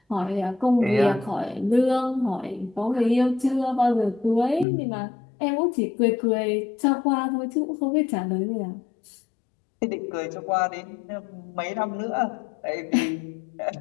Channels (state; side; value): drops out; right; at 4.7 s